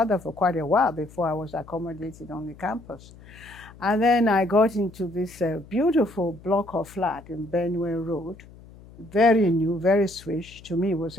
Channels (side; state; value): left; noise; hum, 21 dB below the sound